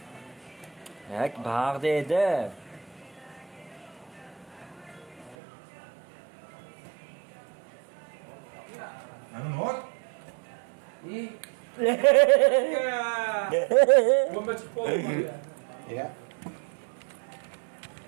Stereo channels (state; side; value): drops out; left; at 5.4 s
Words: Yak bag'da edi. Ana not. İyi. Bomba chiqib qoldi. Ya.